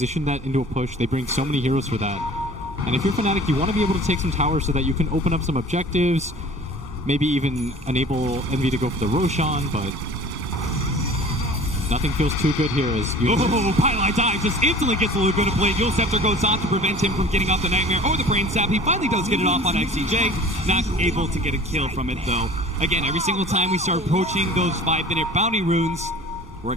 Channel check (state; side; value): normal; both; correlation 0.44